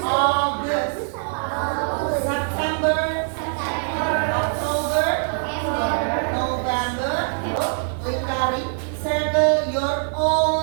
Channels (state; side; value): silent; left; digital silence